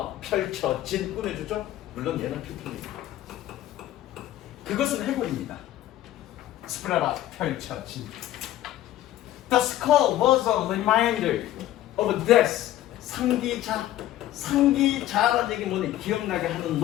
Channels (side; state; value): right; quieter; 13.7 dB